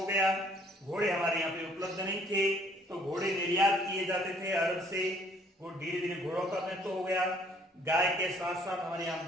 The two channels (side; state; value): both; normal; correlation 0.61